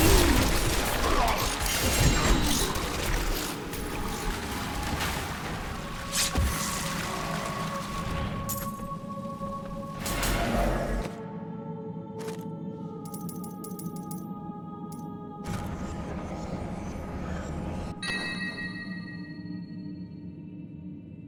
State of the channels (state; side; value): identical; both; correlation 1.00